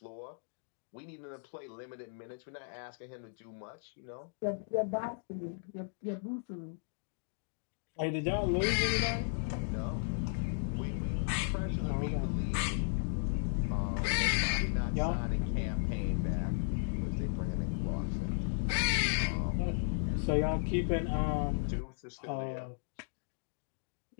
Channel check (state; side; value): silent; right; digital silence